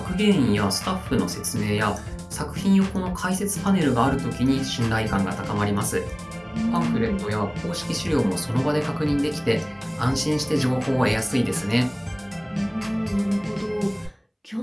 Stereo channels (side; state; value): both; identical; correlation 1.00